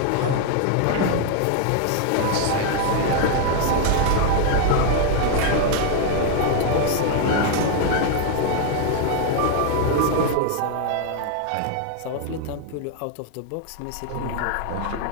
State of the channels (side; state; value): both; different; correlation 0.00